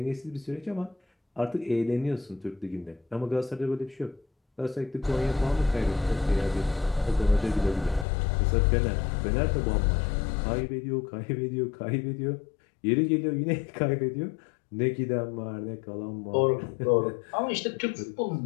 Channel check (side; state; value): right; drops out; at 8.1 s